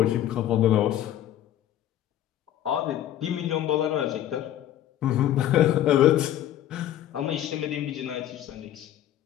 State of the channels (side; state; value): right; quieter; 11.9 dB